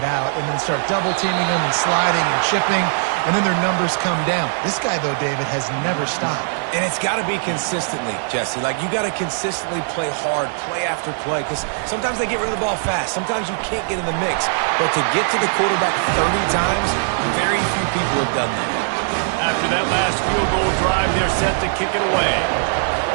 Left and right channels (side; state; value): left; silent; digital silence